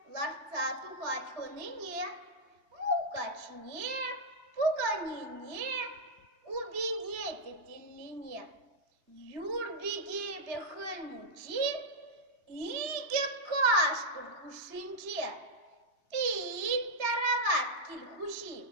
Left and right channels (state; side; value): late; left; 3.3 ms